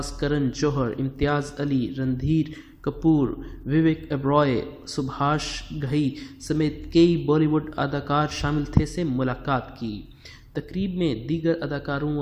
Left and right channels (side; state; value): both; identical; correlation 1.00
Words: کرن جوہر، امتیاز علی، رندھیر کپور، وویک اوبرائے، سبھاش گھئی سمیت کئی بالی ووڈ اداکار شامل تھے سے ملاقات کی۔ تقریب میں دیگر اداکاروں